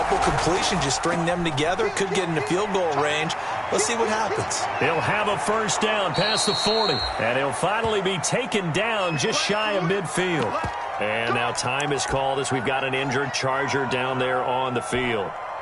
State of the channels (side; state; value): both; identical; correlation 1.00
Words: completions, just string them together. Could get into field goal range. Let's see what happens. He'll have a first down past the 40. And he'll finally be taken down just shy of midfield. And now time is called as we've got an injured Charger down there on the field.